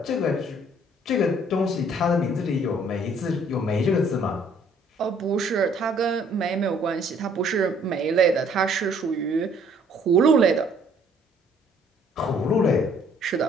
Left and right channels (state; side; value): normal; both; correlation 0.61